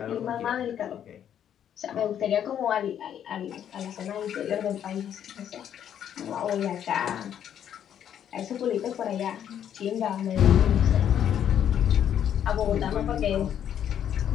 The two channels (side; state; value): right; quieter; 9.6 dB